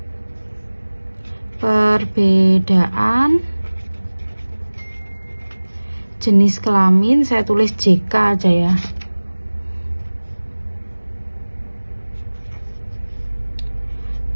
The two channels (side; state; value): both; inverted; correlation -1.00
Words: Perbedaan jenis kelamin, saya tulis JK aja ya.